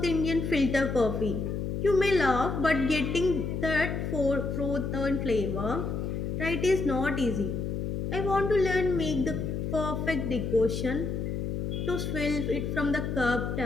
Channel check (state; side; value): noise; left; hum, 2 dB below the sound